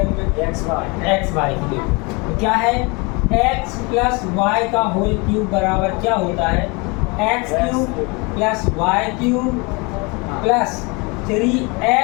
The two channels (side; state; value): right; quieter; 28.6 dB